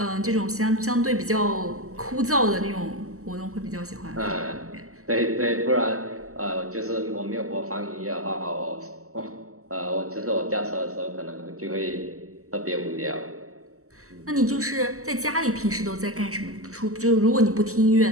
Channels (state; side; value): late; left; 0.64 ms